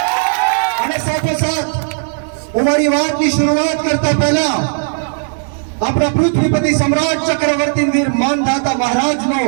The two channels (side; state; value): left; silent; digital silence